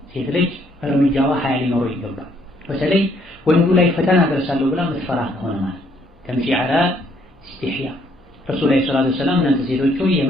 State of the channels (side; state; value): both; normal; correlation 0.68